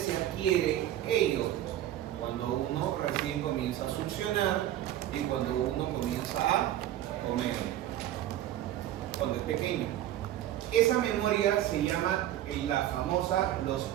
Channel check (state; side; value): quieter; left; 12.8 dB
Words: adquiere ello? Cuando uno recién comienza a succionar y cuando uno comienza a comer, cuando es pequeño. Esa memoria se llama los